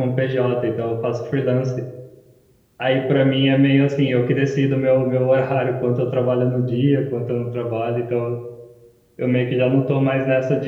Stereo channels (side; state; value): both; identical; correlation 1.00